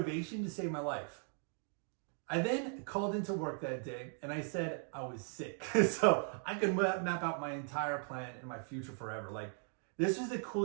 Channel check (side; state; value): left; silent; 52 dB below the other